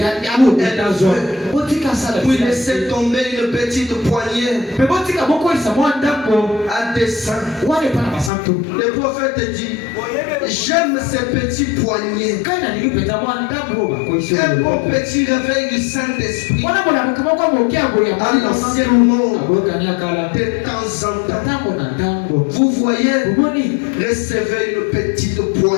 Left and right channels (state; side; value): drops out; right; at 8.3 s